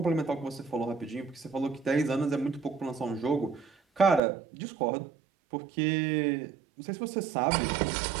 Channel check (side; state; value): left; drops out; at 4.2 s